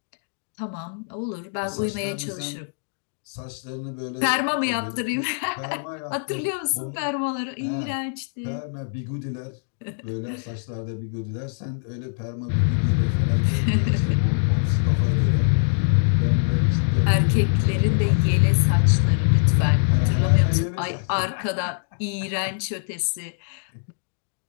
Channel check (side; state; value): right; silent; digital silence